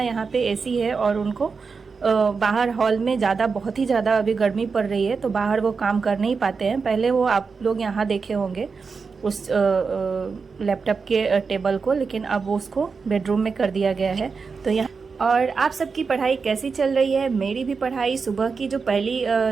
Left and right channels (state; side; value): quieter; left; 5.0 dB